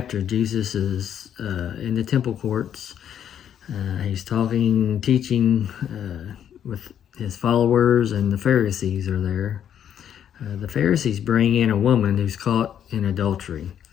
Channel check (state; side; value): quieter; right; 9.4 dB